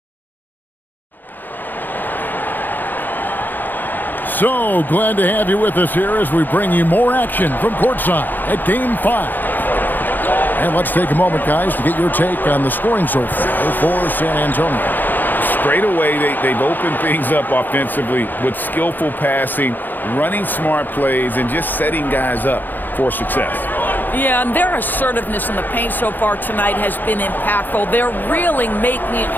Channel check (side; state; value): right; late; 0.088 ms